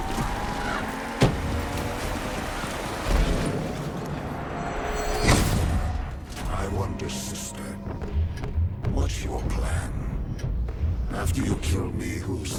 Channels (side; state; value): both; identical; correlation 1.00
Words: I wonder, sister, what's your plan? After you kill me,